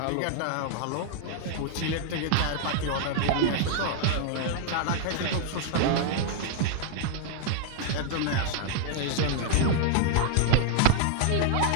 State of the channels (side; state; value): both; different; correlation 0.00